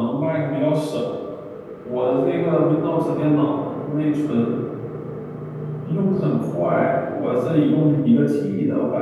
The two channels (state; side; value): identical; both; correlation 1.00